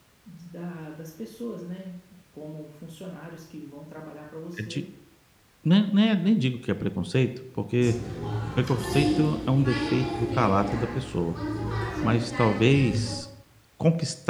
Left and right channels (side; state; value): both; identical; correlation 1.00